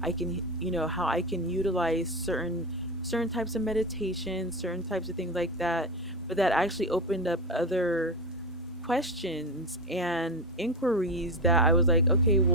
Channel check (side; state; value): both; normal; correlation 0.19